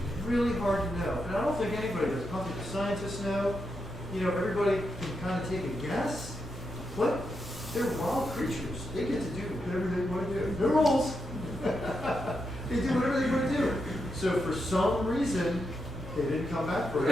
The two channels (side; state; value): both; normal; correlation 0.84